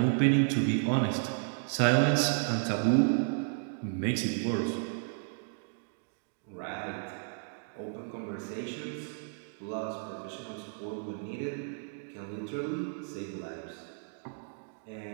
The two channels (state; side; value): silent; left; digital silence